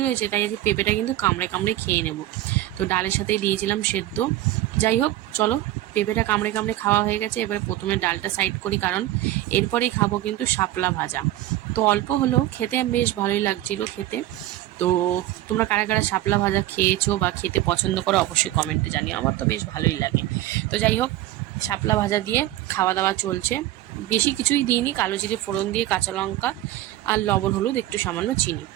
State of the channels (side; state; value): left; quieter; 14.9 dB